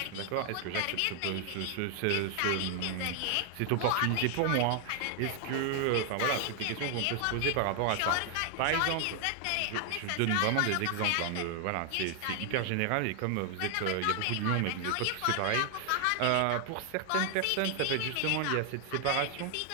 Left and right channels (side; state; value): both; different; correlation 0.00